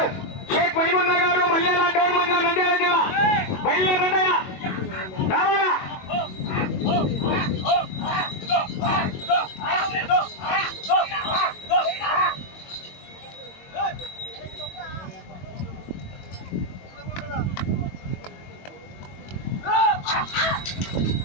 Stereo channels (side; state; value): right; late; 22 ms